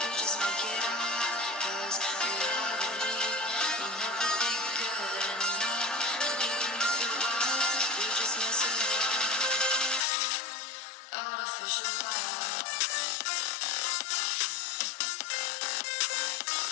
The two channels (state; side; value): drops out; right; at 10.1 s